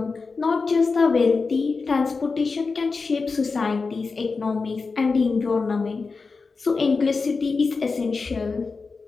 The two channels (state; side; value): quieter; right; 4.4 dB